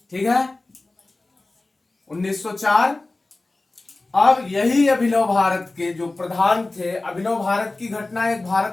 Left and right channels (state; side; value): quieter; right; 3.1 dB